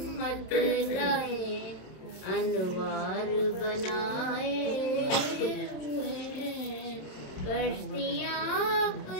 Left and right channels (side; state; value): right; late; 27 ms